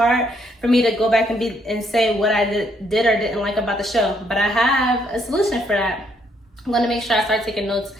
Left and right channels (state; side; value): normal; both; correlation 0.71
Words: for me to go back and say what I did or didn't like about the show. But I have a solution for that. I'm gonna make sure I start taking notes